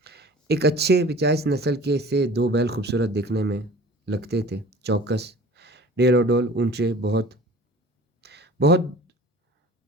ایک اچھے 85 نسل کے سے 2 بیل خوبصورت دیکھنے میں لگتے تھے، چوکس، ڈیل و ڈول، اونچے، بہت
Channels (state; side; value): normal; both; correlation 0.44